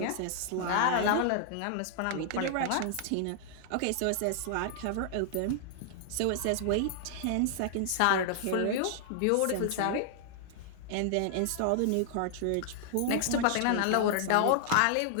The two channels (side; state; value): both; different; correlation -0.01